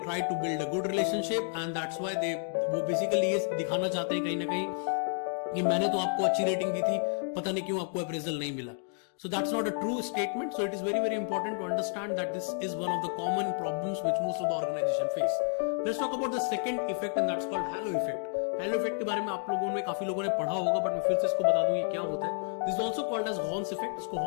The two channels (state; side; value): silent; right; 57 dB below the other